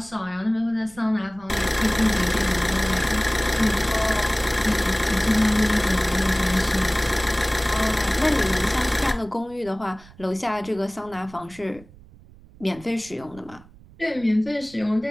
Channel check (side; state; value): right; noise; rumble, 23 dB below the sound